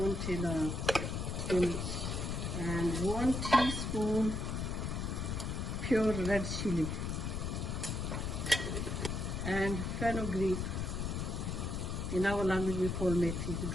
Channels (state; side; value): noise; left; rumble, 2 dB below the sound